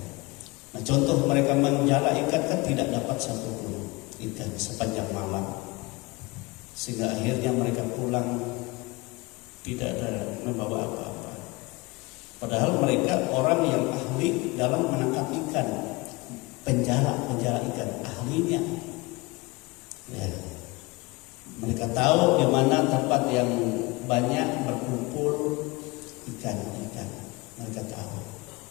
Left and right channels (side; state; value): right; quieter; 24.1 dB